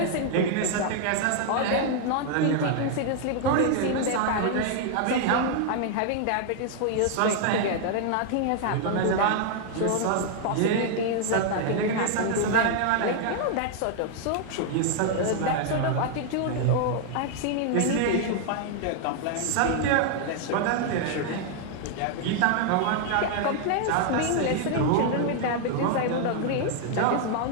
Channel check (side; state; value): both; different; correlation 0.00